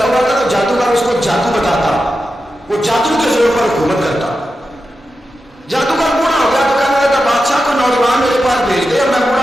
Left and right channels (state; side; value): normal; both; correlation 0.90